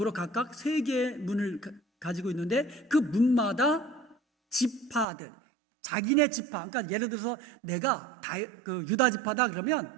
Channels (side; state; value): left; drops out; at 5.1 s